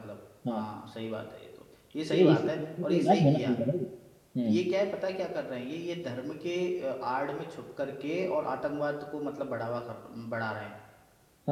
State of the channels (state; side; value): identical; both; correlation 1.00